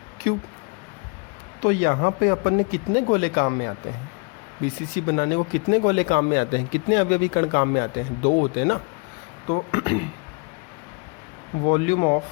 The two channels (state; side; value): quieter; right; 33.3 dB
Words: तो यहाँ पे अपन ने कितने गोले काम में आते हैं, BCC बनाने को कितने गोले काम में आते हैं, कितने अवयवी कण काम में आते हैं, 2 होते हैं ना। तो वॉल्यूम ऑफ,